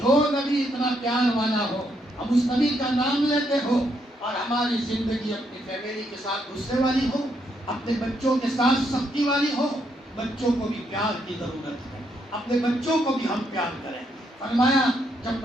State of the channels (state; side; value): normal; both; correlation 0.76